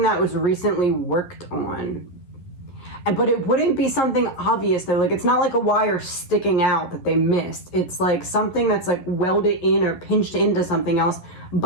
that was recently worked on. But it wouldn't be something obvious though. Like, it's not like a wire sticking out that they missed. It's like something that's like welded in or pinched into something else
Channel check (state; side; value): late; right; 11 ms